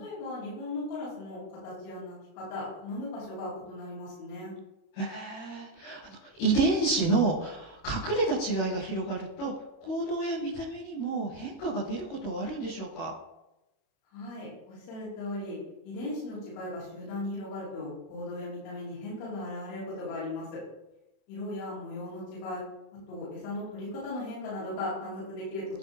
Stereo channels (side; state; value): right; late; 36 ms